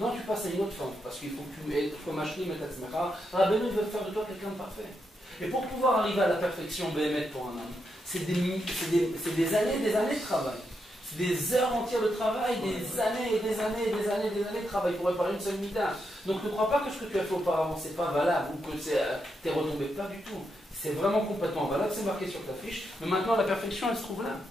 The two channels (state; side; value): normal; both; correlation 0.83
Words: tu passes à une autre forme, parce qu'il faut que tu sois machlim et tatzmecha. Rabbeinu veut faire de toi quelqu'un de parfait. Et pour pouvoir arriver à la perfection Bémet pour un homme, c'est des années de travail. Des heures entières de travail, des années et des années de travail pour réparer une seule mida. Donc ne crois pas que ce que tu as fait auparavant c'est pas valable ou que t'es retombé, pas du tout. C'est vraiment complètement valable, c'est marqué sur ta fiche. Mais maintenant la perfection elle se trouve là.